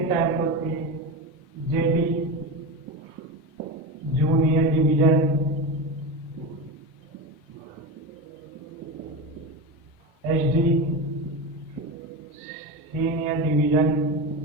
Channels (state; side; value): normal; both; correlation 0.21